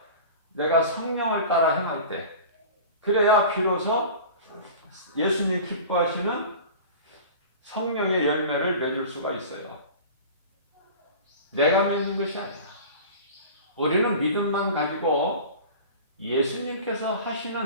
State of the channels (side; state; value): both; inverted; correlation -0.37